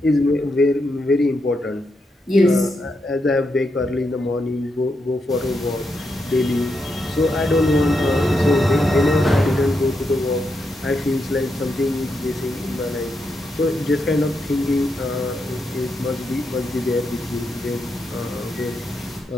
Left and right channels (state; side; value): normal; both; correlation 0.83